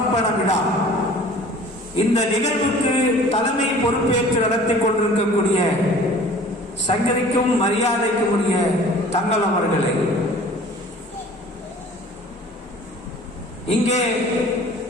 விழா இந்த நிகழ்வுக்கு தலைமை பொறுப்பேற்று நடத்தி கொண்டிருக்கக்கூடிய சங்கதிக்கும் மரியாதைக்கும் உரிய தங்கள் அவர்களை, இங்கே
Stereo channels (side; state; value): both; normal; correlation 0.47